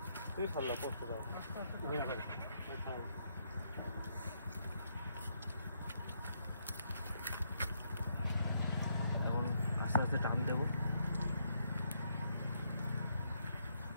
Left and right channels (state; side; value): inverted; both; correlation -0.76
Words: এখন আস্তে আস্তে টান দেবো।